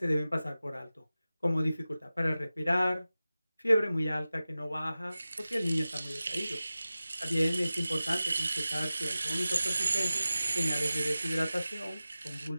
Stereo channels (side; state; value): both; inverted; correlation -0.96